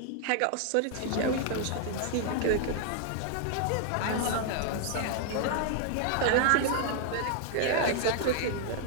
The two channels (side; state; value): both; different; correlation 0.00